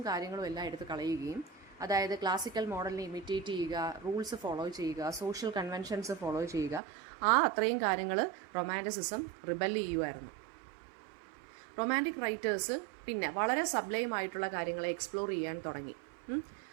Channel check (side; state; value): left; drops out; at 6.8 s